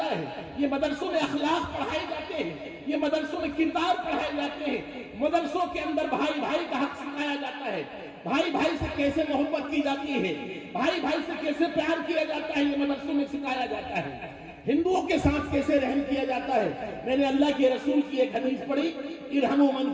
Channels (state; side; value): identical; both; correlation 1.00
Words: ہے، یہ مدرسوں میں اخلاق پڑھائے جاتے ہیں، یہ مدرسوں میں کردار پڑھائے جاتے ہیں، مدرسوں کے اندر بھائی بھائی کا حق سکھایا جاتا ہے، بھائی بھائی سے کیسے محبت کی جاتی ہے، بھائی بھائی سے کیسے پیار کیا جاتا ہے، یہ مدرسوں میں سکھایا جاتا ہے۔ ہندوؤں کے ساتھ کیسے رحم کیا جاتا ہے۔ میں نے اللہ کے رسول کی ایک حدیث پڑھی، ارحموا من